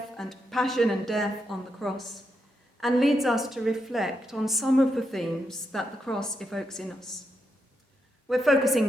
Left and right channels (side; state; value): both; normal; correlation 0.83